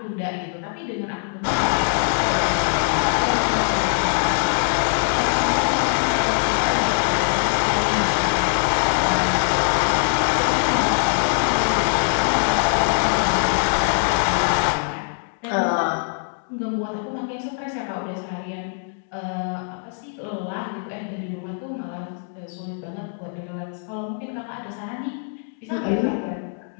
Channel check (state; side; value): silent; right; 64 dB below the other